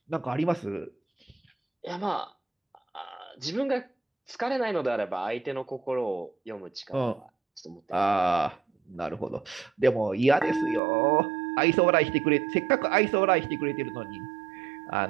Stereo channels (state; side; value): drops out; left; at 10.8 s